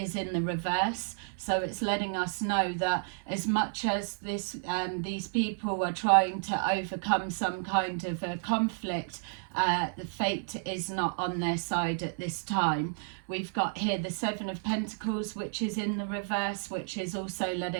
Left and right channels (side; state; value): left; silent; 57 dB below the other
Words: in the reverse. So it's letting us know that as much as these people are trying to overcome some kind of a conflict, the fate is not on their side at this time. We've got here the Seven of Pentacles, which is in the reverse, which is also